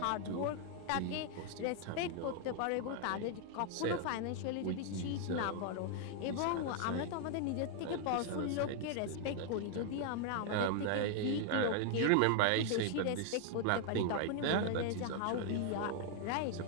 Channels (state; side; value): different; both; correlation 0.00